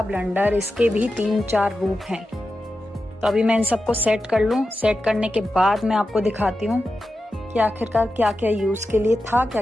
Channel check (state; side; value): normal; both; correlation 0.91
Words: ब्लंडर, इसके भी 3-4 रूप हैं। तो अभी मैं इन सबको सेट कर लूँ। सेट करने के बाद मैं आपको दिखाती हूँ कि आखिरकार क्या क्या यूज़ के लिए था, क्या